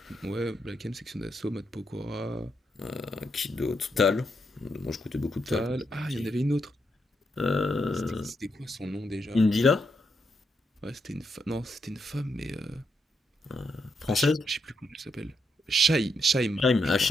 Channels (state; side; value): normal; both; correlation 0.81